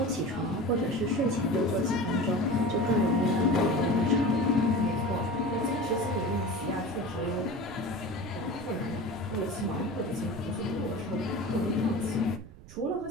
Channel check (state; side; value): noise; right; rumble, 18 dB below the sound